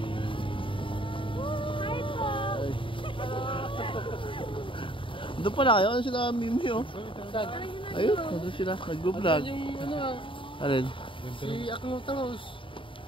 doon pala kayo, ano sila Mimi oh? Ayun, doon sila, nag-vlog. Yung ano ah, Alin? si Akno Tangos.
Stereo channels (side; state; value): right; late; 0.25 ms